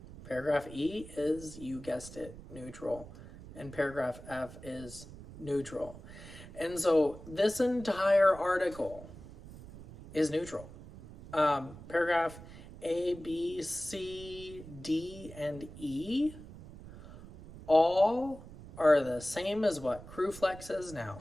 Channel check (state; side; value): noise; right; rumble, 16 dB below the sound